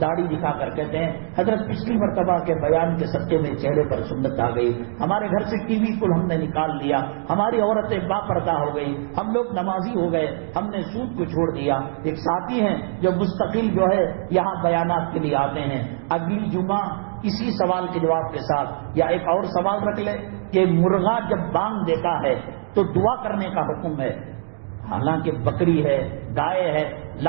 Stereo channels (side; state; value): left; silent; digital silence